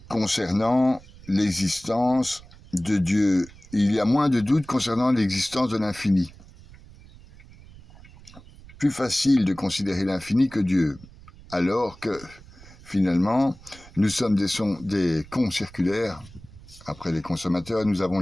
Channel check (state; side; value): noise; right; rumble, 21 dB below the sound